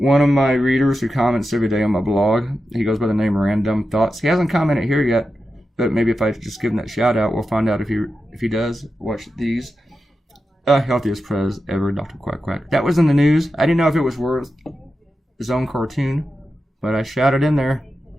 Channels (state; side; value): normal; both; correlation 0.90